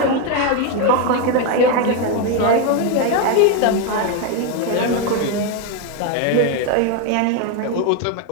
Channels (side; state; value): both; different; correlation 0.02